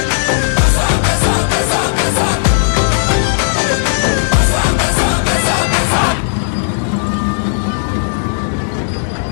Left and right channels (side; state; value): right; silent; digital silence